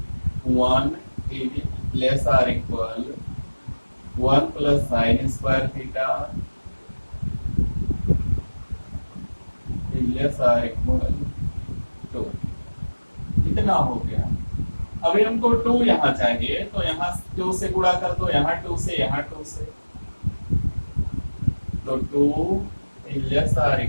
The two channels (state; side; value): inverted; both; correlation -1.00